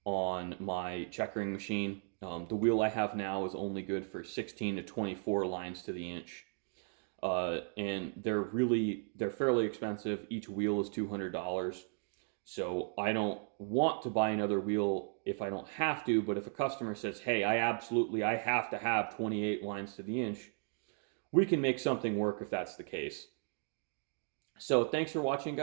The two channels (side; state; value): left; silent; 54 dB below the other